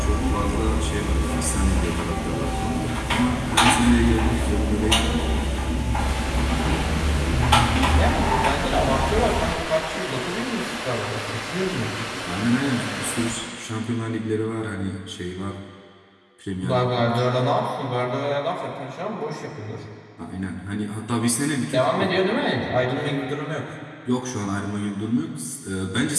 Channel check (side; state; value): both; identical; correlation 1.00